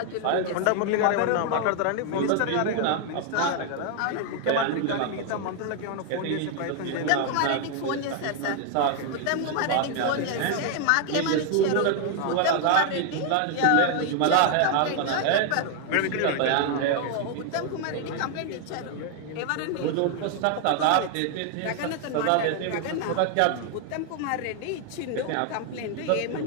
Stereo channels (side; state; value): both; different; correlation 0.00